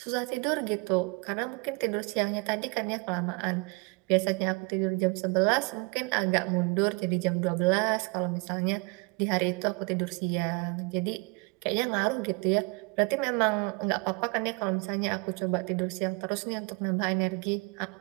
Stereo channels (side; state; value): left; quieter; 29.6 dB